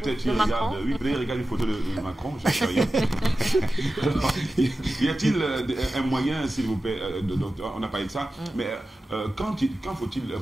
Macron? Il regarde une photo de Macron, je ne sais rien. Y a-t-il un moyen, s'il vous plaît, on n'a pas parlé de ça, mais quand faut-il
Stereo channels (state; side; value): normal; both; correlation 0.94